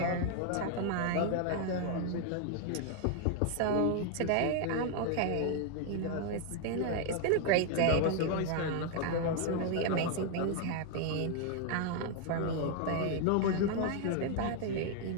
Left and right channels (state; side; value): different; both; correlation 0.00